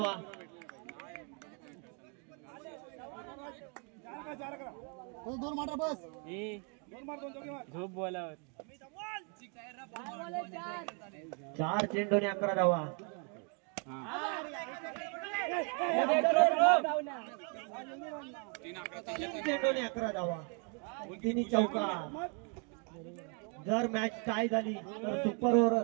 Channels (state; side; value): quieter; left; 37.8 dB